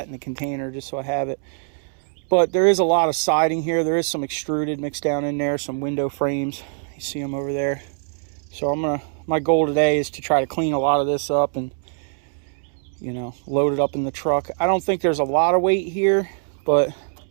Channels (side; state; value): left; silent; 64 dB below the other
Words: in the container just so I have it. But there is a lot of siding here. There is some extruded mixed down in there, some window frames. You see them over there. So my goal today is to try to clean a lot of this up and, you know, load it up in the truck. I don't think there's a lot of weight here, but